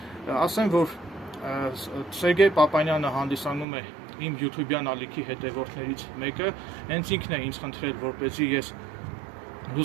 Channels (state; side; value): drops out; left; at 3.7 s